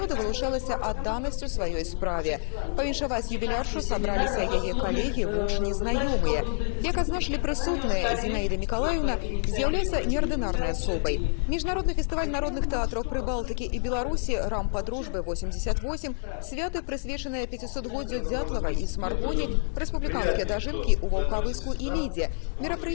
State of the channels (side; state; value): right; silent; digital silence